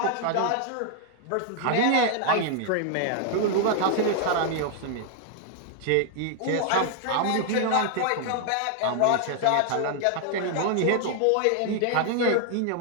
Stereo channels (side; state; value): both; different; correlation 0.00